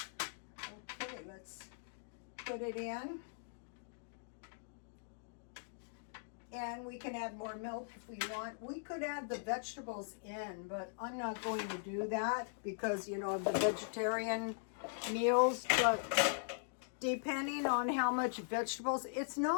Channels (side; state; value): right; silent; digital silence